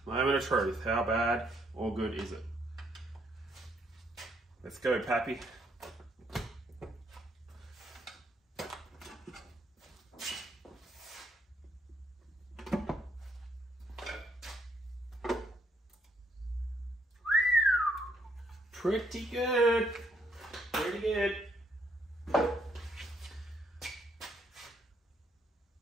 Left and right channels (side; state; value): both; normal; correlation 0.71